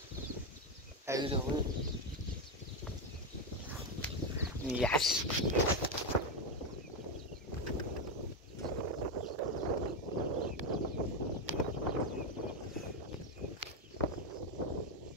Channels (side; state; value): both; normal; correlation 0.08